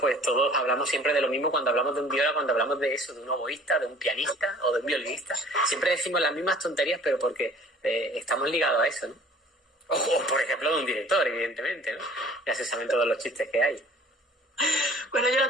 todos hablamos siempre de lo mismo cuando hablamos de un viola, cuando hablamos de eso, de un oboísta, de un pianista o de un violinista. Siempre decimos las mismas tonterías, pero porque estamos ligados a eso, ¿no? O por ejemplo de un director, evidentemente, ¿no? Ya se saben todos los chistes que hay. Bueno, yo la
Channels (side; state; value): both; normal; correlation 0.50